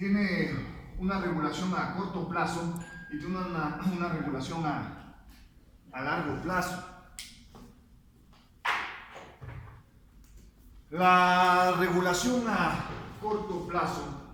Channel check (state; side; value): identical; both; correlation 1.00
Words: una regulación a corto plazo y tiene una regulación a largo plazo. La regulación a corto